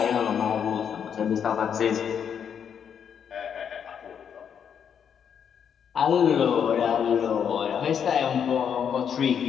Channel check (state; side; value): quieter; right; 7.9 dB